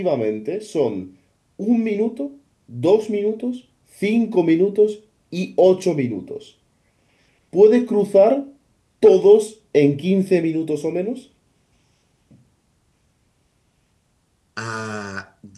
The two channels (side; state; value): both; identical; correlation 1.00